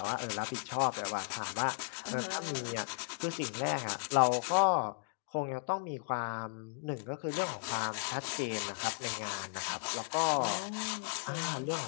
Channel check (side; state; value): right; silent; digital silence